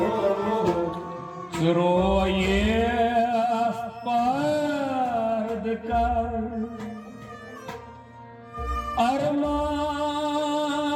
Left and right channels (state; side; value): identical; both; correlation 1.00